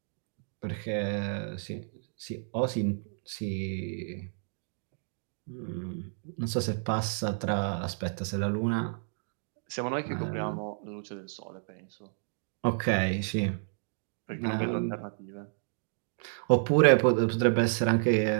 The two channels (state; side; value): silent; left; digital silence